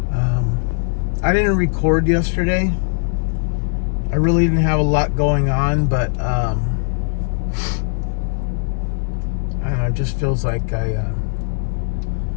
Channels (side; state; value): right; silent; digital silence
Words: I didn't record yesterday. I really didn't have a lot going on, but I don't know, it just feels like I